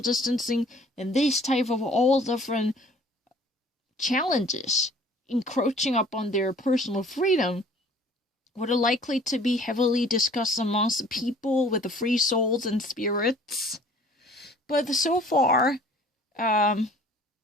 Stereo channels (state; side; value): normal; both; correlation 0.52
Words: distancing, and this type of all different challenges encroaching upon their personal freedom would are likely to be heavily discussed amongst the people with the free souls and spirits. But so far,